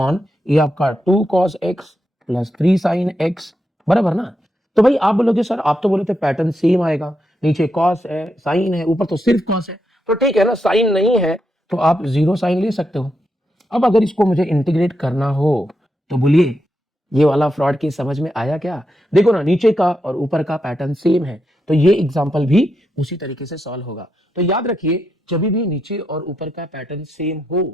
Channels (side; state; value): both; normal; correlation 0.84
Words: ये आपका 2 cos x plus 3 sine x, बराबर ना। तो भाई आप बोलोगे सर आप तो बोले थे पैटर्न सेम आएगा, नीचे कॉस है, साइन है, ऊपर तो सिर्फ कॉस है। तो ठीक है ना, साइन नहीं है तो आप 0 साइन ले सकते हो। अब अगर इसको मुझे इंटीग्रेट करना हो तो बोलिए ये वाला फ्रॉड की समझ में आया क्या। देखो ना नीचे का और ऊपर का पैटर्न सेम है, तो ये एग्जांपल भी उसी तरीके से सॉल्व होगा। तो याद रखिए जब भी नीचे और ऊपर का पैटर्न सेम हो